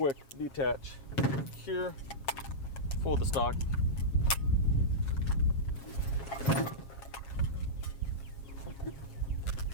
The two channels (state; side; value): late; right; 7.4 ms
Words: detach here, fold the stock.